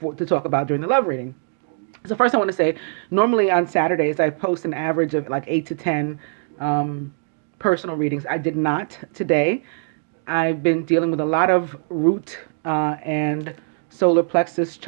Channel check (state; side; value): silent; left; 64 dB below the other